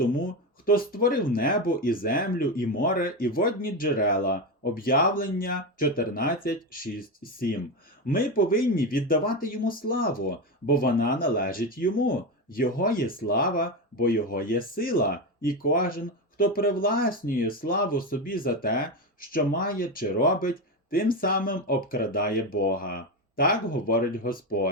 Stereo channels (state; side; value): normal; both; correlation 0.15